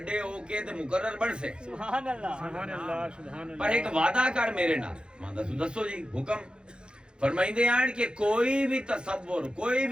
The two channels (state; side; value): late; left; 0.051 ms